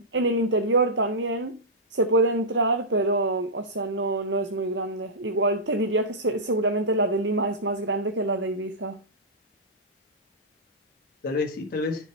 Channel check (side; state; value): both; normal; correlation -0.13